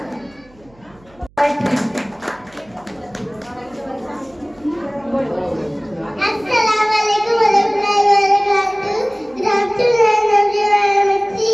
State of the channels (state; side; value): noise; right; hum, 29 dB below the sound